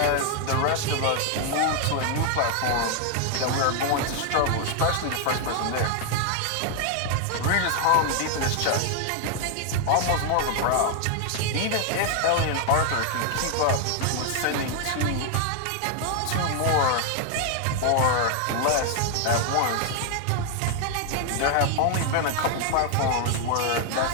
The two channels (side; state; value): both; different; correlation 0.00